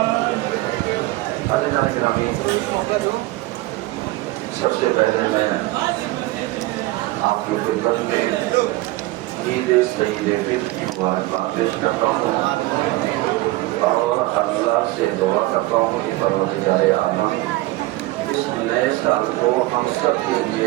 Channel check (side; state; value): left; quieter; 19.3 dB